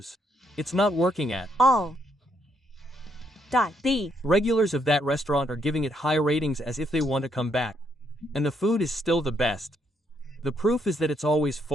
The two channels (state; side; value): normal; both; correlation 0.74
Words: It's not working at all. The regulars of that restaurant are giving it high ratings as if they want to come back. And the food is still the best. The proof is that it's always